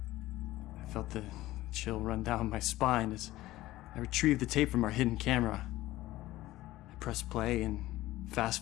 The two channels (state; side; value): quieter; right; 16.6 dB